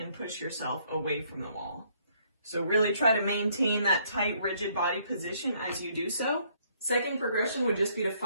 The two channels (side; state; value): both; inverted; correlation -0.67